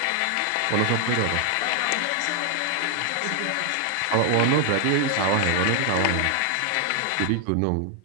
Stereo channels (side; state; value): both; different; correlation 0.00